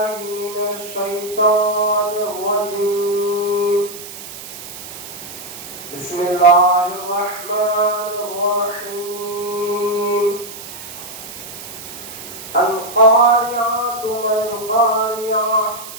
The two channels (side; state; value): right; noise; hiss, 12 dB below the sound